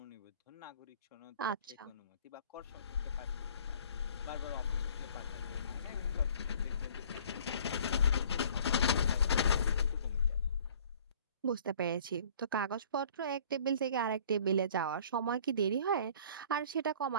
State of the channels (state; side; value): inverted; both; correlation -0.52